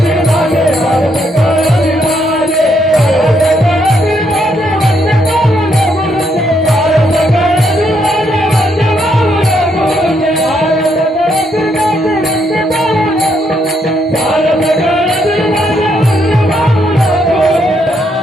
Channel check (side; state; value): both; normal; correlation 0.75